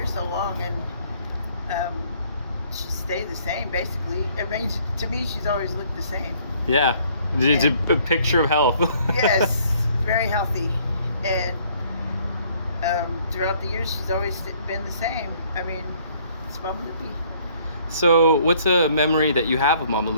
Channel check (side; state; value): both; inverted; correlation -0.61